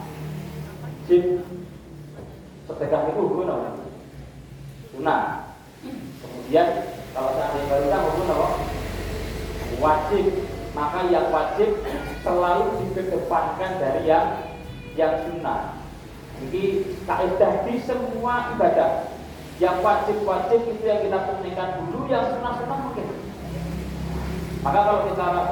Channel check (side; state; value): both; identical; correlation 1.00